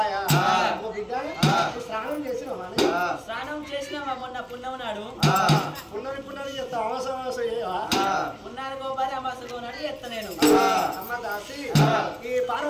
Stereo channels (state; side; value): identical; both; correlation 1.00